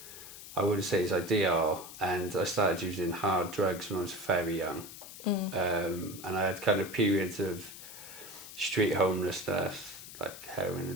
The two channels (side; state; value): left; noise; hiss, 14 dB below the sound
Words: I wouldn't say is ideal, and I started using hard drugs when I was very young. And I had kind of periods of street homelessness, like heroin